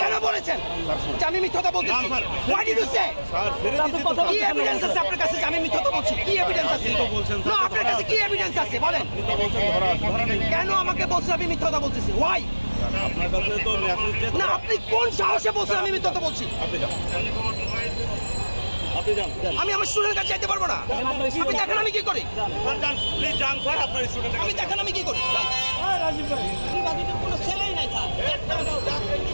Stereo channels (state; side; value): inverted; both; correlation -1.00